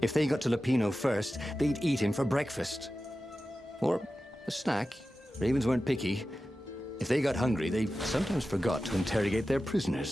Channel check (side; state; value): both; normal; correlation 0.94